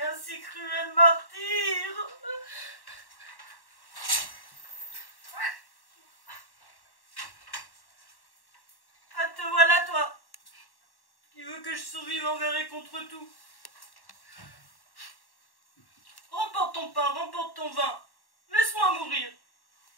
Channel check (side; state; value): right; late; 1.1 ms